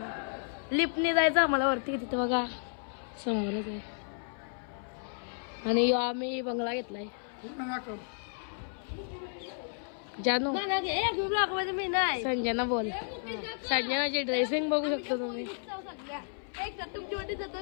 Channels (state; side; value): silent; right; 56 dB below the other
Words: लिफ्टने जायचं आम्हाला वरती, तिथे बघा समोरच आहे. आणि आम्ही बंगला घेतलाय. जानू संजना बोल. संजनाची ड्रेसिंग बघू शकता तुम्ही.